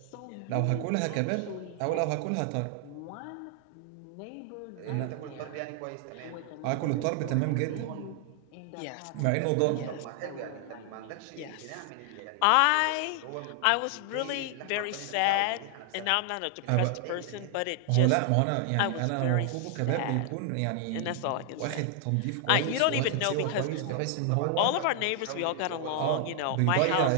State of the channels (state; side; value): different; both; correlation 0.00